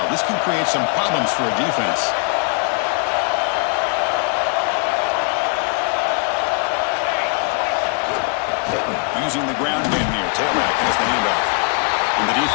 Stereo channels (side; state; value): right; quieter; 37.0 dB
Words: This can create some problems for a defense. Using the ground game here. Tailback has the handoff. And the